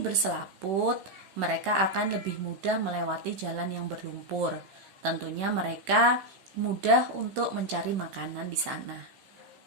berselaput, mereka akan lebih mudah melewati jalan yang berlumpur. Tentunya mereka mudah untuk mencari makanan di sana.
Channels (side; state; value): left; late; 16 ms